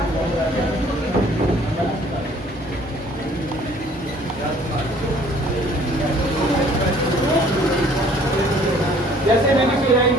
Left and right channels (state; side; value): normal; both; correlation 0.56